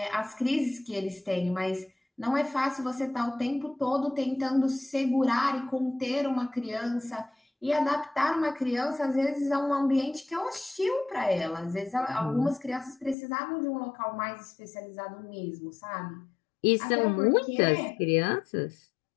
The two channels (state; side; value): drops out; right; at 13.2 s